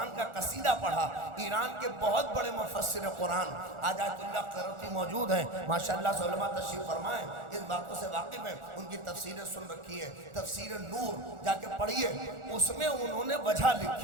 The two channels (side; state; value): left; late; 1.4 ms